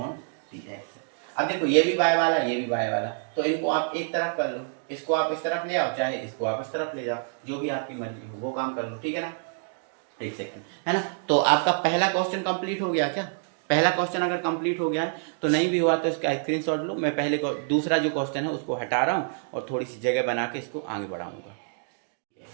dx। अब देखो ये भी y वाला, ये भी y वाला, तो इनको आप एक तरफ कर लो, इसको आप इस तरफ ले आओ, चाहे इसको आप इस तरफ ले जाओ, जो भी आपकी मर्जी हो वो काम कर लो, ठीक है ना। एक सेकंड, है ना। तो आपका पहला क्वेश्चन कंप्लीट हो गया क्या, पहला क्वेश्चन अगर कंप्लीट हो गया है तो नहीं भी हुआ तो इसका स्क्रीनशॉट लो, मैं पहले दूसरा जो क्वेश्चन है उसको हटा रहा हूँ और थोड़ी सी जगह बना के इसको आगे बढ़ाऊंगा।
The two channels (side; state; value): left; silent; digital silence